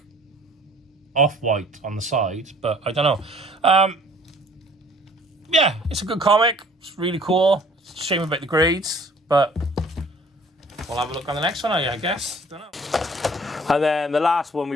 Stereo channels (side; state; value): both; normal; correlation 0.54